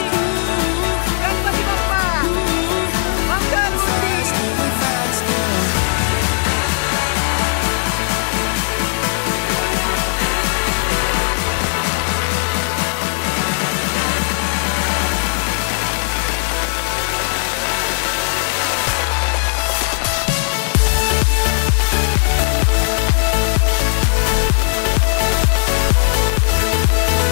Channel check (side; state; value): right; silent; digital silence